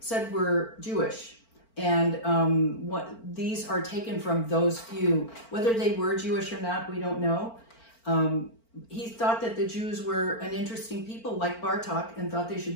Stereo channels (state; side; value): late; right; 4.4 ms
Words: were Jewish, and these are taken from those few. Whether they were Jewish or not, we don't know. He thought that the Jews were an interesting people like Bartok and thought they